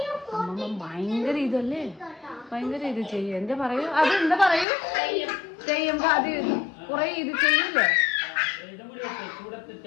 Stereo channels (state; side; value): drops out; right; at 4.7 s